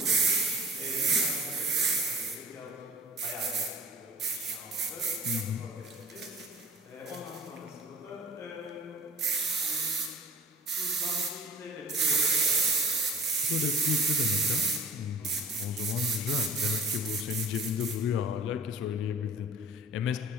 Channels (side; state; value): both; normal; correlation 0.46